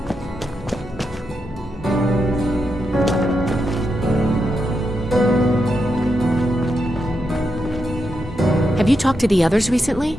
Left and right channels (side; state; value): both; normal; correlation 0.85